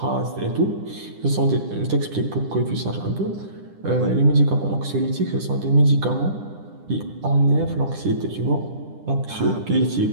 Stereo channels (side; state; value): left; late; 10 ms